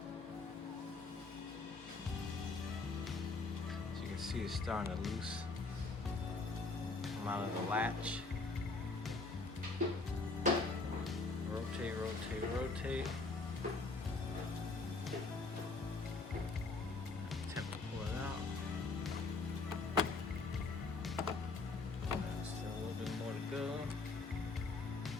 As you can see, it's starting to loose come out of the latch. Rotate, rotate, rotate. Attempt to pull it out. Still a little bit more to go.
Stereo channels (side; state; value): right; quieter; 3.7 dB